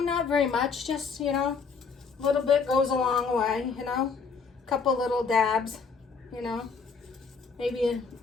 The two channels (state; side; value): quieter; right; 5.3 dB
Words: not very much, just, you know, a little bit goes a long way, you know, a couple little dabs, you know,